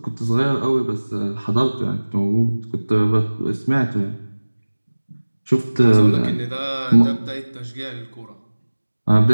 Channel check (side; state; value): both; inverted; correlation -1.00